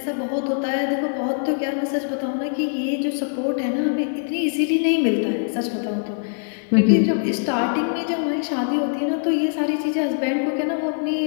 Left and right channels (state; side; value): silent; right; digital silence